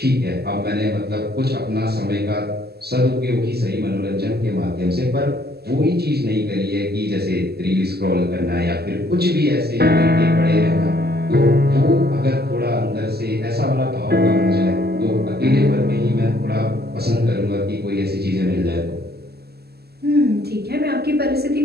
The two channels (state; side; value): late; left; 0.46 ms